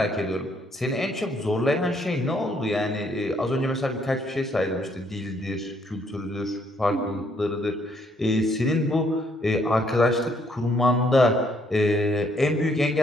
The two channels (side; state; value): both; normal; correlation 0.69